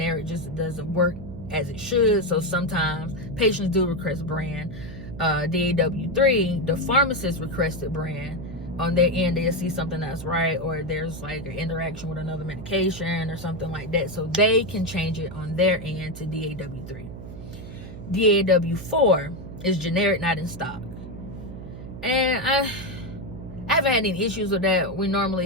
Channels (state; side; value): noise; right; hum, 12 dB below the sound